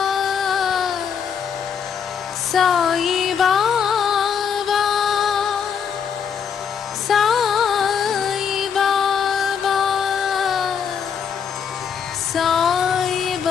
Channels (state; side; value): quieter; right; 7.3 dB